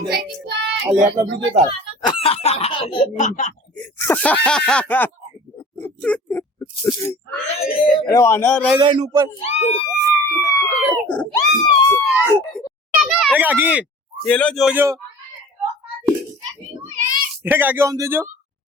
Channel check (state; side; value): normal; both; correlation 0.43